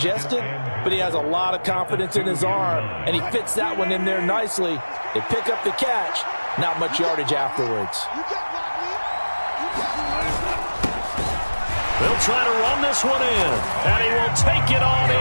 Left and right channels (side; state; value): both; inverted; correlation -1.00